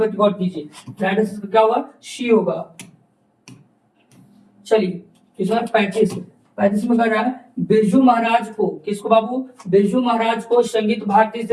गौर कीजिए, राइट आंसर क्या होगा, सी होगा। चलिए क्वेश्चन 35 35 में कर रहा है, बिरजू महाराज को, किसको बाबू, बिरजू महाराज को संगीत भारती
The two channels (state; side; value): identical; both; correlation 1.00